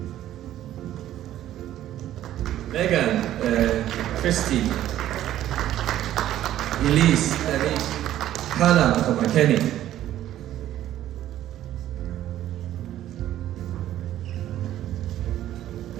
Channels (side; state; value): left; quieter; 12.7 dB